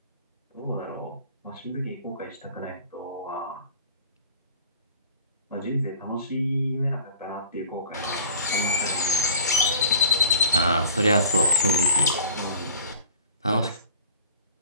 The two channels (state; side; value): inverted; both; correlation -0.45